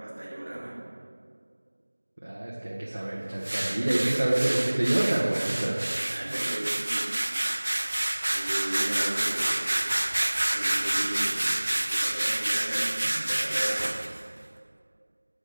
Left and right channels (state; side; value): inverted; both; correlation -1.00